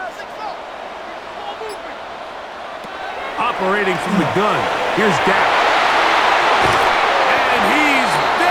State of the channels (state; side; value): identical; both; correlation 1.00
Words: Operating from the gun, here's Dak. And he's